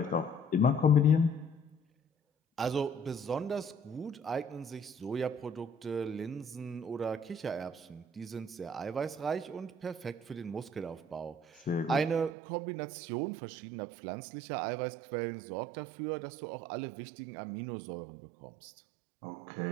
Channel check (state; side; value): drops out; left; at 12.4 s